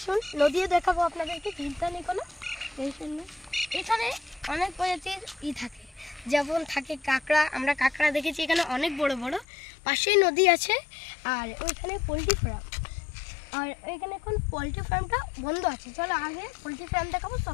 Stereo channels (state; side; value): drops out; right; at 9.5 s